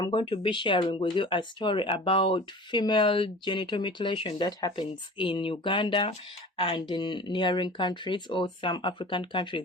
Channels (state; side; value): normal; both; correlation 0.40